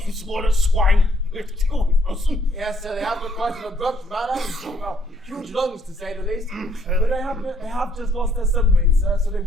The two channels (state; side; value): normal; both; correlation 0.68